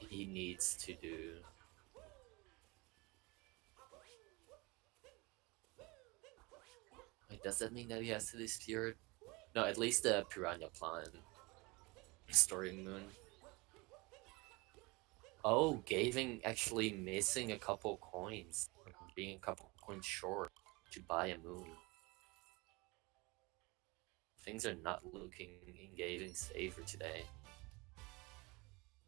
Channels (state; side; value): quieter; left; 25.5 dB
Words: needs to do Wait, does that mean that he has to do Spirit? No, at least the Piranha Plant Story Moon. Oh, Gaving actually missing a couple coins, being a couple coins short to buy a moon. Things are not looking in Gaving's favor today.